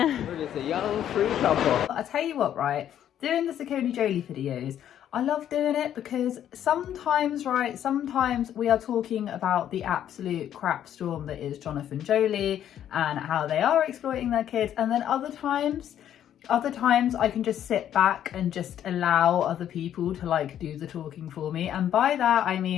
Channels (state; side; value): quieter; right; 10.5 dB